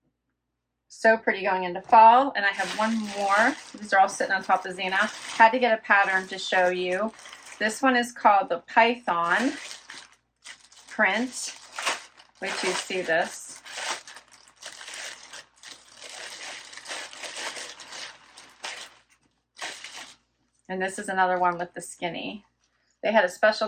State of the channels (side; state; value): both; identical; correlation 1.00